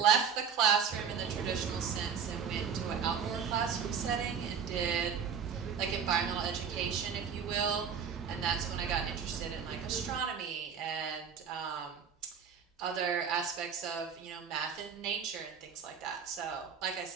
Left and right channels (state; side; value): quieter; left; 7.1 dB